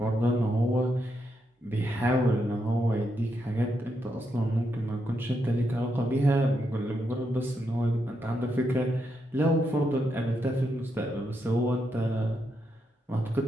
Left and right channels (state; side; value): normal; both; correlation 0.82